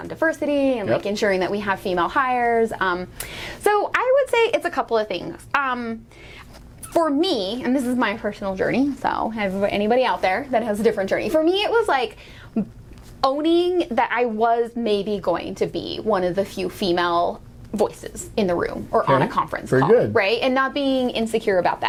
diversity and like ensuring that we have female hires. So I would say it's a couple of things. For me, and this is my personal journey, so anybody out there that has a different journey, for me it was like owning that I was maybe going to be one of the few female voices in the room or on a conference call, right? And not being insecure about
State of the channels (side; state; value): both; identical; correlation 1.00